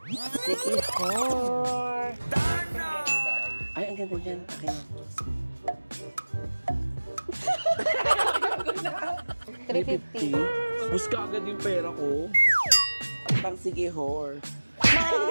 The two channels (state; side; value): inverted; both; correlation -1.00